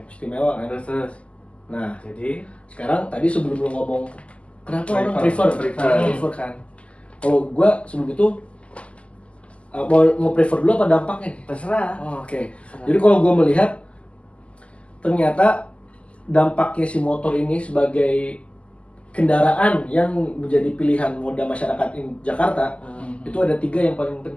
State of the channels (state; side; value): late; right; 0.058 ms